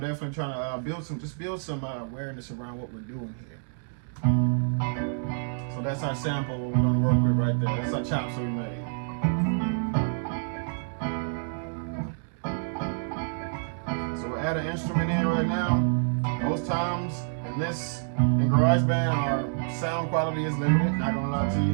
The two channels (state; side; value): silent; left; digital silence